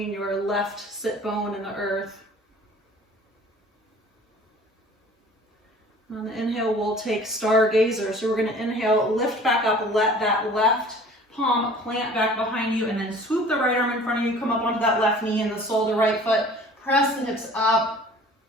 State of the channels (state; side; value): normal; both; correlation 0.48